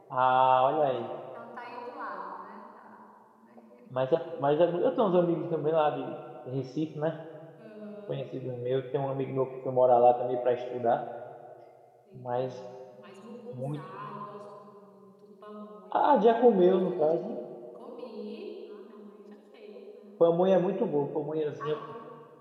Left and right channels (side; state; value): both; identical; correlation 1.00